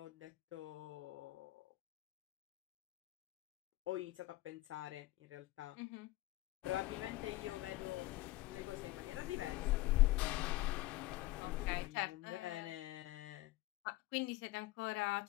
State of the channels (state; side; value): quieter; right; 18.0 dB